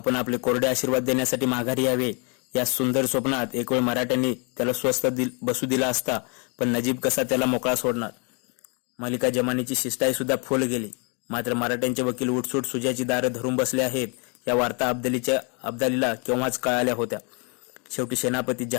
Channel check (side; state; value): right; quieter; 34.5 dB